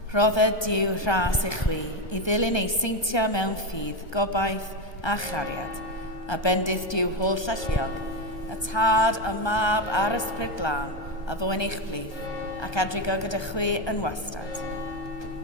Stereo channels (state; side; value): late; right; 1.2 ms